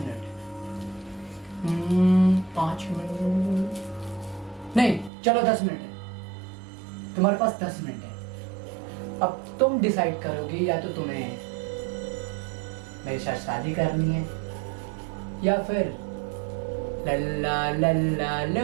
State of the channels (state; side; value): drops out; left; at 5.1 s